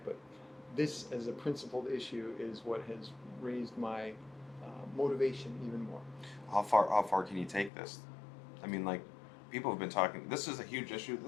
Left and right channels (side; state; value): right; drops out; at 7.7 s